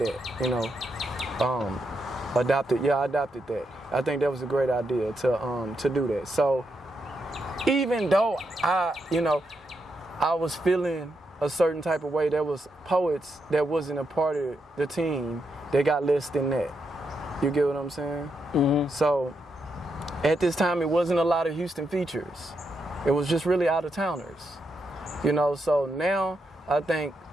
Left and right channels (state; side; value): normal; both; correlation 0.82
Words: you know. I adopted that. I think that was a great idea to do that. So even though I was feeling a certain type of way, there was poets that wasn't a part of the team that got less than that. You get what I'm saying? So at this time, it wasn't a lot of Houston features. It was just really out-of-towners. You know, so now I think